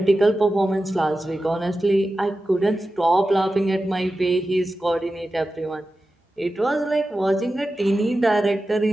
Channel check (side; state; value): both; normal; correlation 0.93